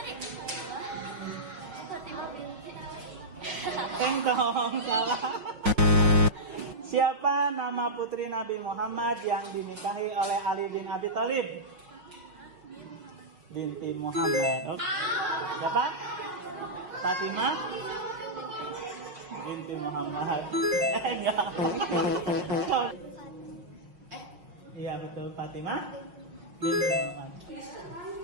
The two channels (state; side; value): late; left; 5.5 ms